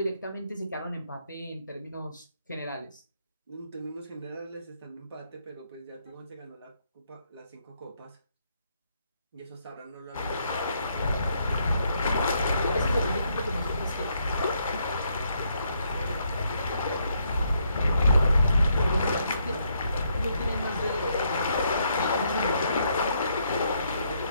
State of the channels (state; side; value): inverted; both; correlation -0.73